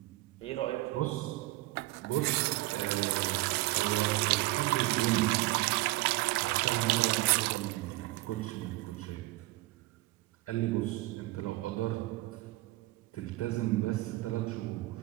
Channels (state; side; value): quieter; left; 19.9 dB